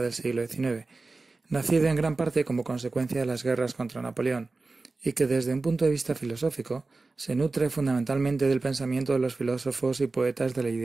del siglo XIX, nacido en gran parte como consecuencia de las guerras contra Napoleón, y que desde un punto de vista filosófico se nutre fundamentalmente del pensamiento de los filósofos y poetas del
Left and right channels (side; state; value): left; quieter; 3.6 dB